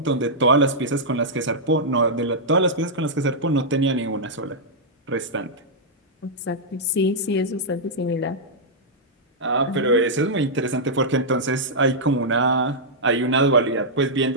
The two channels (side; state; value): both; normal; correlation -0.08